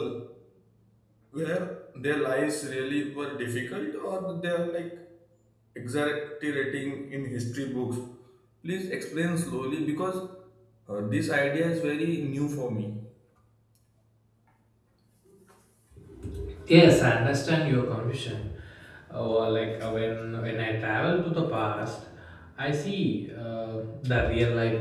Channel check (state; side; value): identical; both; correlation 1.00